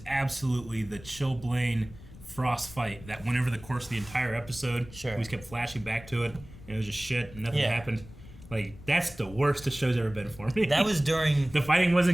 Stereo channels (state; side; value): noise; left; rumble, 18 dB below the sound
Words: absolutely the Chilblain Frost fight that went over the course of the entire episode. Sure. We just kept flashing back to it, and it was just shit, and nothing Yeah. happened. Like, that's the worst the show's ever been for me. That was during... The fighting